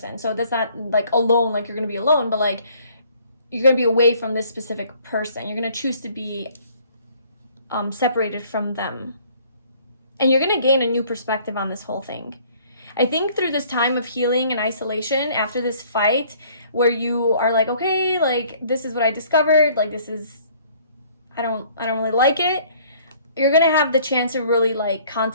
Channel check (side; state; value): both; inverted; correlation -0.57